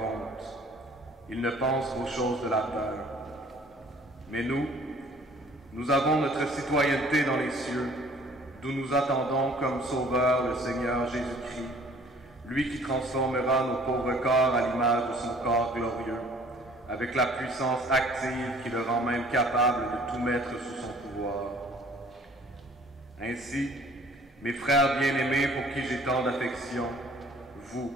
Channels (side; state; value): both; normal; correlation 0.53